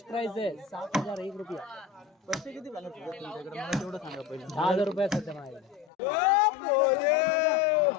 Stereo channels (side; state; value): right; drops out; at 5.9 s